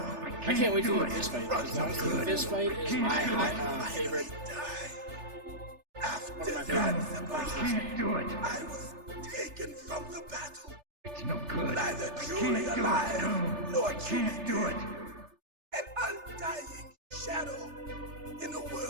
can't wait to do a fist fight, because honestly, the fist fight is my favorite. One of my favorite parts of this game. do it. I was taken from the battle. It's no good. Neither truly alive nor truly do it. An undying shadow in a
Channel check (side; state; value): left; late; 3.4 ms